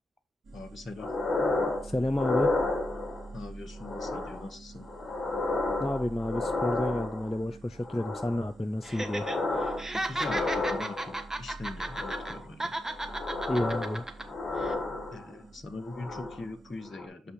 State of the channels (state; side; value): normal; both; correlation 0.87